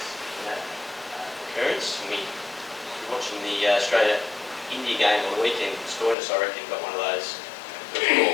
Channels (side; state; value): right; drops out; at 6.2 s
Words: in that occurrence. And we were watching the Australia-India game on the weekend. Stoinis, I reckon, got one of those first